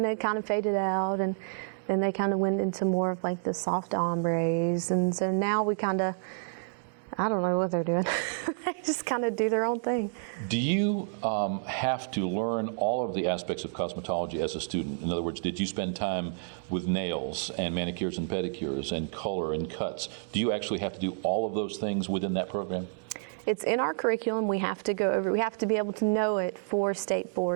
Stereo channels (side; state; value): left; silent; digital silence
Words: they kind of faded out, and then they kind of went into more of like the soft ombres. And so now we kind of, I don't know what they're doing. They just kind of do their own thing. Do you have to learn all of the aspects of cosmetology as a student? In other words, did you spend time with nails and manicures and pedicures and color and cuts? Do you actually have to do all of those things within that program? It's in our curriculum. We have to go over. We have to be able to know it for state